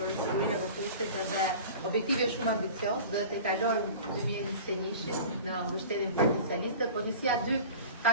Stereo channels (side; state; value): both; inverted; correlation -0.39